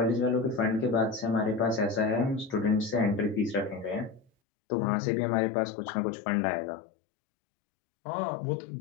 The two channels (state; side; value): drops out; right; at 4.3 s